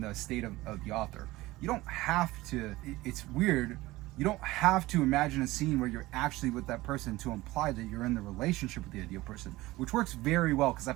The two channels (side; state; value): left; quieter; 18.8 dB